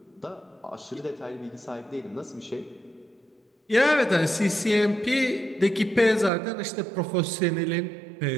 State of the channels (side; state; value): left; drops out; at 6.3 s